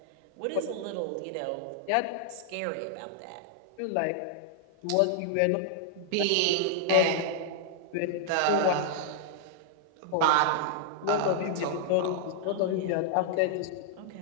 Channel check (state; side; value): different; both; correlation -0.01